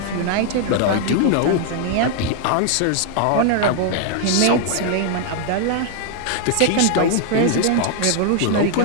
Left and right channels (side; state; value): both; different; correlation 0.00